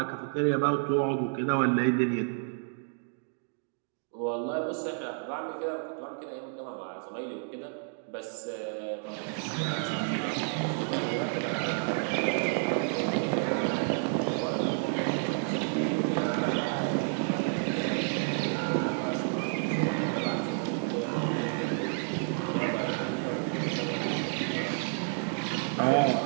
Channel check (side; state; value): left; silent; 58 dB below the other